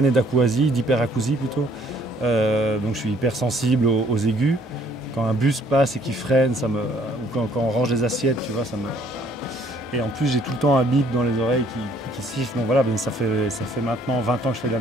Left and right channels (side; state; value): both; normal; correlation 0.61